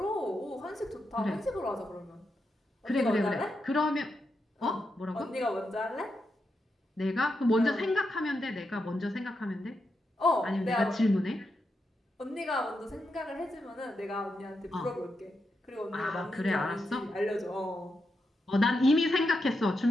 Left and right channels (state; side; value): normal; both; correlation 0.85